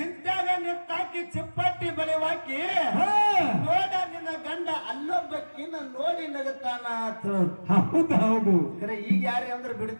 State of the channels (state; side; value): inverted; both; correlation -1.00